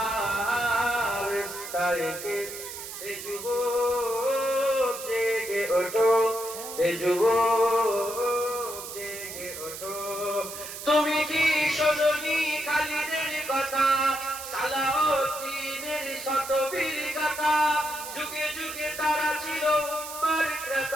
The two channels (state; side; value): noise; right; hiss, 10 dB below the sound